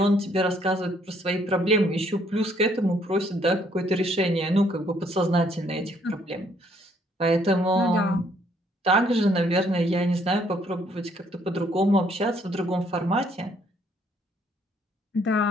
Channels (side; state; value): both; normal; correlation 0.66